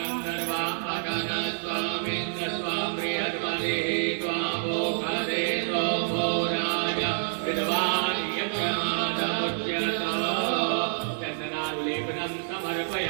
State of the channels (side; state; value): left; silent; 60 dB below the other